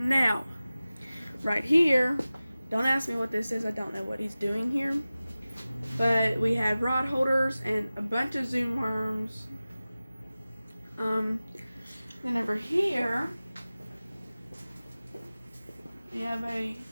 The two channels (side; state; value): both; inverted; correlation -0.97